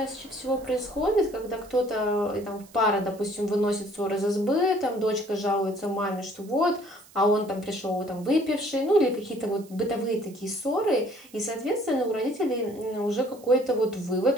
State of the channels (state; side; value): noise; right; hiss, 24 dB below the sound